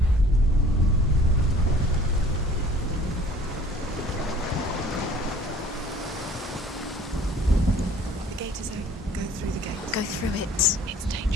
Go through it. It's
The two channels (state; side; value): normal; both; correlation 0.51